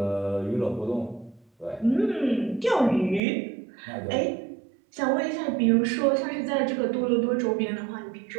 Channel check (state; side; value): drops out; left; at 3.2 s